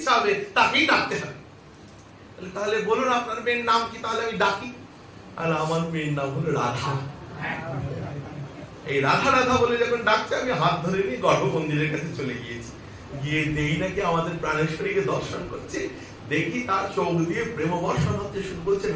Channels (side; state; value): both; identical; correlation 1.00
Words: হবে তাকেই ডাকতে হবে। তাহলে বলুন আপনার মেয়ের নাম কি, তাহলে আমি ডাকি। আর আমার মেয়ের নাম হলো রাধা। এই রাধা রাধা বলে যখন ডাকছে, আমি হাত ধরে নিয়ে গর্ভ মন্দিরের কাছে চলে গিয়েছি। গিয়ে দেখি নাকি আমাদের প্রাণেশ্বরীকে দর্শন করছে। দেখি তার চোখ দিয়ে প্রেম বর্ষণ হচ্ছে, শুরু করছে